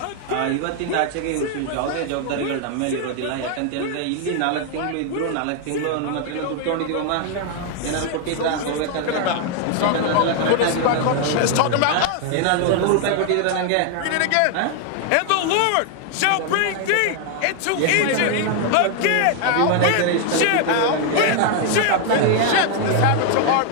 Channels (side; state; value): both; different; correlation 0.00